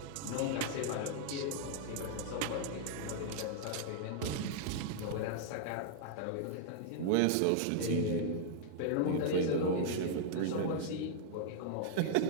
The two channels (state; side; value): different; both; correlation -0.01